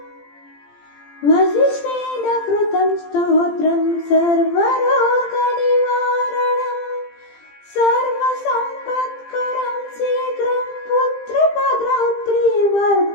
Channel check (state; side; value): late; right; 17 ms